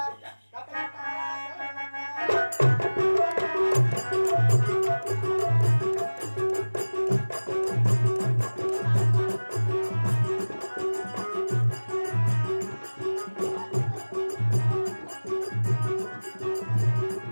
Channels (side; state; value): both; inverted; correlation -1.00